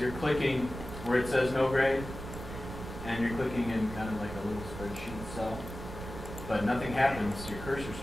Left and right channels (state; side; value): noise; right; rumble, 10 dB below the sound